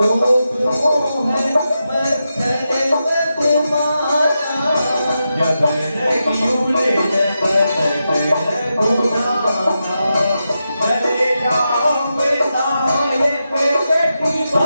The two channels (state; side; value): inverted; both; correlation -0.88